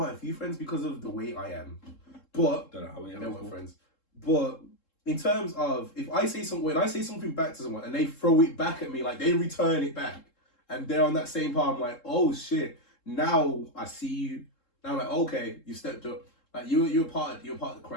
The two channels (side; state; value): right; late; 3.7 ms